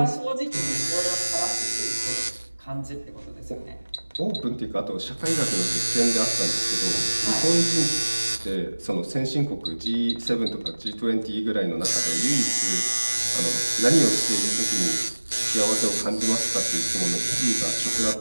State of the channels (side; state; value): both; inverted; correlation -1.00